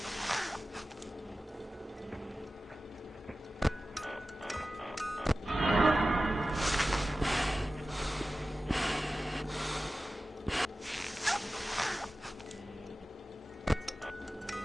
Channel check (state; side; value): normal; both; correlation 0.95